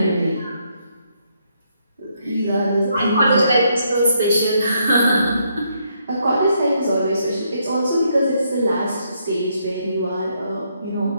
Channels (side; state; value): both; inverted; correlation -0.75